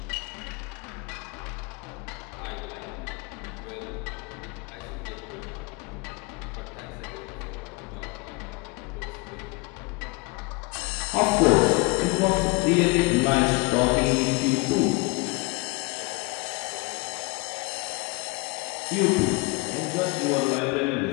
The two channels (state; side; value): quieter; right; 27.0 dB